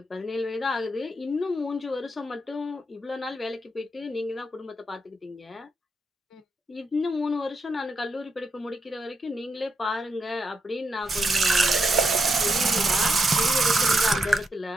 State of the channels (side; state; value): both; normal; correlation 0.81